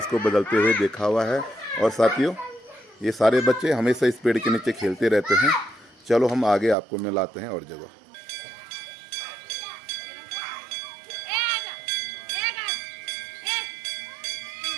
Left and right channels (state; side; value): drops out; left; at 6.8 s